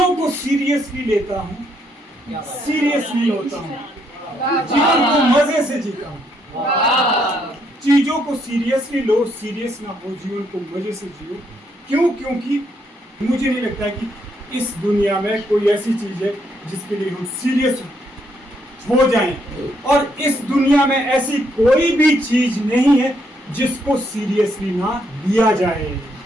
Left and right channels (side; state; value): both; normal; correlation 0.74